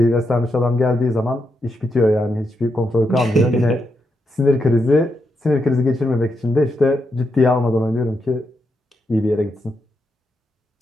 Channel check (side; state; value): both; normal; correlation 0.83